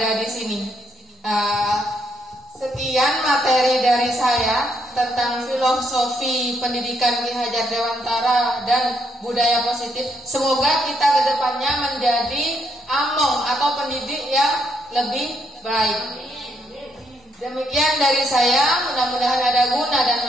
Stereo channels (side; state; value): both; normal; correlation 0.75